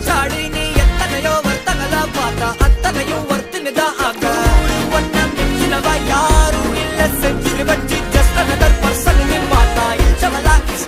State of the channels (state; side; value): identical; both; correlation 1.00